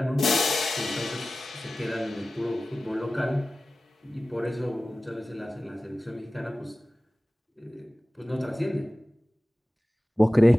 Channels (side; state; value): both; normal; correlation 0.96